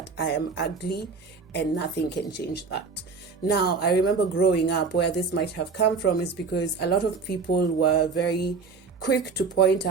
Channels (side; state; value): left; quieter; 4.8 dB